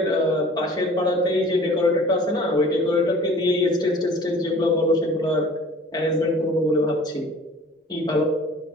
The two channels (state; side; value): normal; both; correlation 0.47